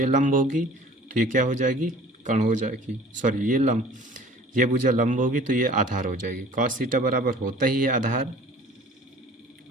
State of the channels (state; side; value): normal; both; correlation 0.47